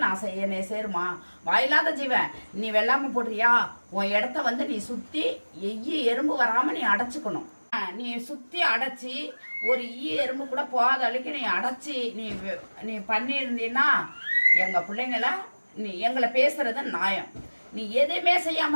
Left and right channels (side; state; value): both; inverted; correlation -1.00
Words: என்னைய சேருமா, வாயில்லாத ஜீவன், நீ வெள்ளாம போடுறியா, உன் இடத்த வந்து நீ சுத்தி எறும்பு வராம நீ அடைச்சுக்கணும். நீ சுத்தி அடைச்சி ஒரு எறும்பு கூட போகாத அளவுக்கு நீ அடைச்சி நீ பண்ணியிருந்தீன்னா எங்க பிள்ளைங்கள நீ எங்களை பேசுறது நியாயம். நீ எதுவுமே